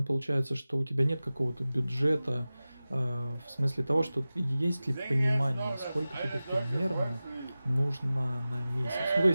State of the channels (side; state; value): both; inverted; correlation -0.96